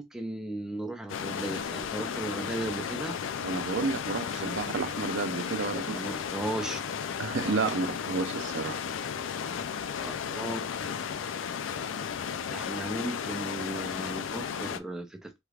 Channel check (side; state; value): both; normal; correlation 0.23